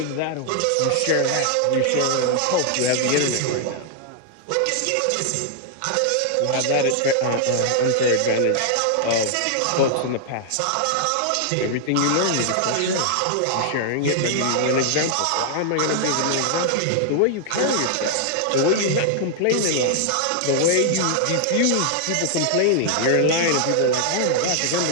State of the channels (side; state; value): both; different; correlation -0.01